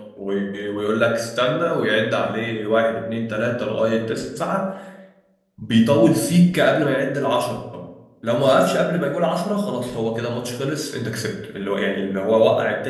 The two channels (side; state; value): both; identical; correlation 1.00